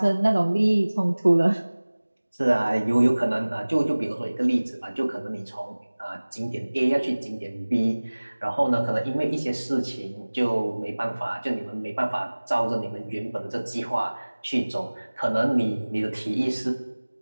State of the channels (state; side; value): inverted; both; correlation -1.00